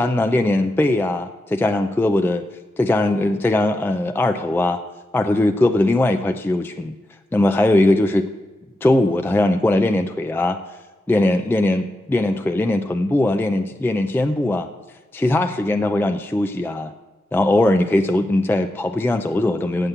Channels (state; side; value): normal; both; correlation 0.88